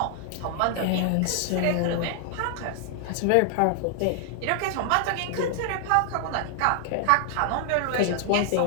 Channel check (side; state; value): both; different; correlation 0.00